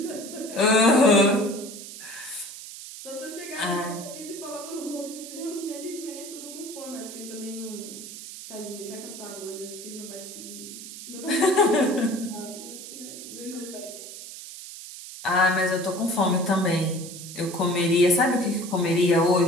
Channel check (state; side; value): noise; right; hiss, 12 dB below the sound